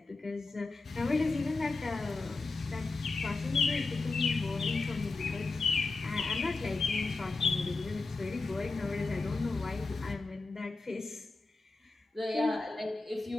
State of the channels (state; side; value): quieter; right; 3.6 dB